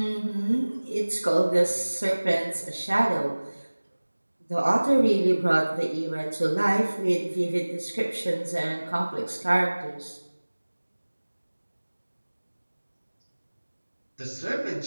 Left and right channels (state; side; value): inverted; both; correlation -1.00